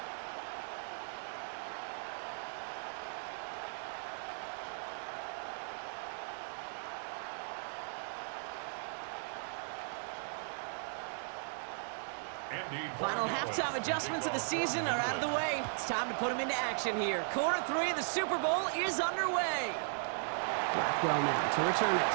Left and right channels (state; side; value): silent; left; digital silence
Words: Final halftime adjustments of the season are out of the way. It's time to put them into action here. Quarter 3 of the Super Bowl is underway. Blackwell now to return it.